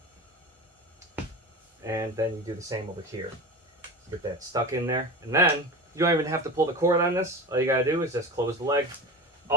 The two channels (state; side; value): normal; both; correlation 0.29